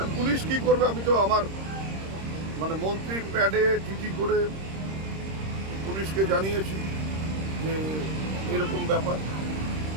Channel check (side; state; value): left; late; 26 ms